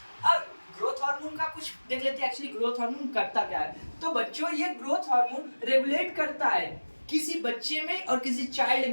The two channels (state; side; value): inverted; both; correlation -1.00